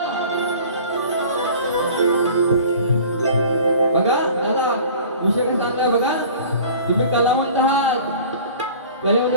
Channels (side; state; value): both; inverted; correlation -0.44